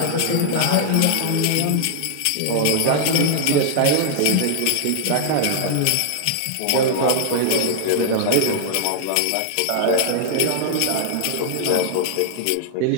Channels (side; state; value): both; different; correlation -0.01